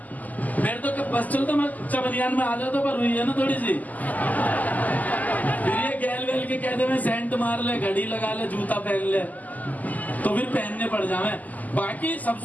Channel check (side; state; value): right; late; 0.080 ms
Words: मेरे तो बस चलता मैं चबनियान में आ जाता, पर हुई है ना थोड़ी सी, फिर ये गैल वैल के कहते मैं सेंट मार ले, घड़ी लगा ले, जूता पहन ले, तो फिर पहनने पड़ जावे। बाकी